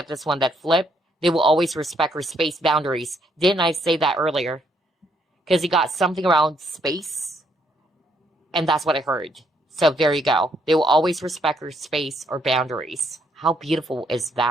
this one that flipped. They will always respect her space boundaries. Didn't I say that earlier? Because you got something around space. And that's what I heard. So there you go. They will always respect her space or boundaries. How beautiful is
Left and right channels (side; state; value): both; normal; correlation 0.72